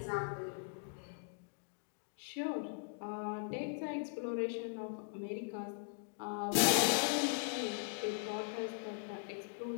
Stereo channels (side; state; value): right; silent; digital silence